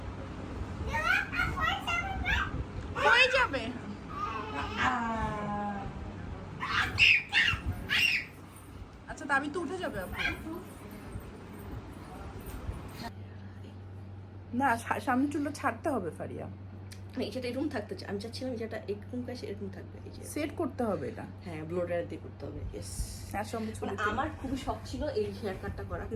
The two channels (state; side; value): identical; both; correlation 1.00